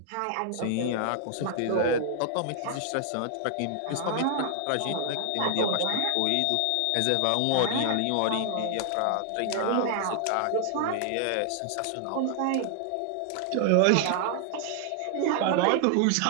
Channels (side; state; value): both; different; correlation 0.00